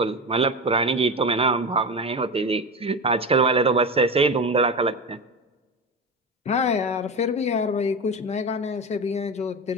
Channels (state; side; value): normal; both; correlation 0.22